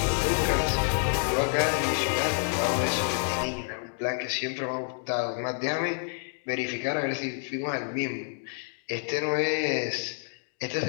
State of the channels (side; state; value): right; silent; digital silence